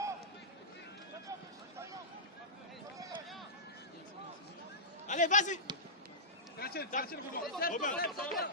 Allez, vas-y. Robin.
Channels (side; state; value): both; normal; correlation -0.17